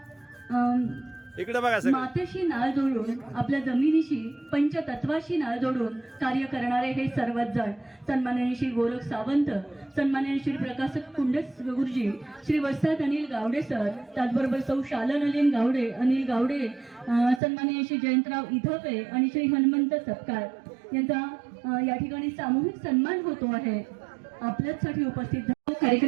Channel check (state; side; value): drops out; left; at 17.4 s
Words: इकडे बघा सगळे. मातेशी नाळ जोडून आपल्या जमिनीशी पंचतत्वाशी नाळ जोडून कार्य करणारे हे सर्वच जण सन्माननीय श्री गोरख सावंत, सन्माननीय श्री प्रकाश कुंडस गुरुजी, श्री वस्ताद अनिल गावडे सर, त्याचबरोबर सौ शालन अनिल गावडे, सन्माननीय श्री जयंतराव इधपे आणि श्री हनुमंत सपकाळ यांचा या ठिकाणी सामूहिक सन्मान होतो आहे. आपल्यासाठी उपस्थित